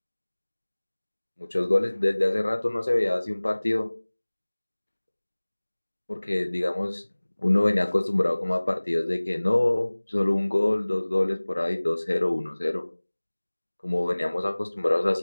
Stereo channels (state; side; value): inverted; both; correlation -1.00